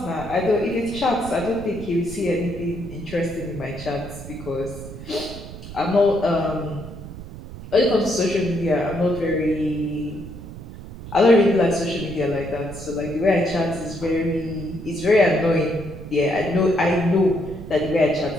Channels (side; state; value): right; noise; rumble, 13 dB below the sound